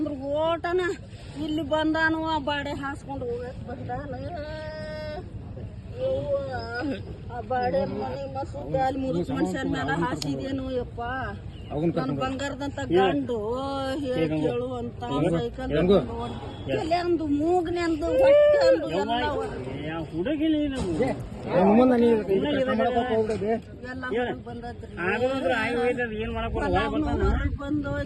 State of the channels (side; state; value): both; identical; correlation 1.00